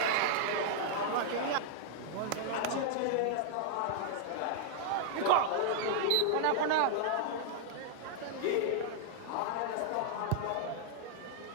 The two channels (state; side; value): different; both; correlation -0.01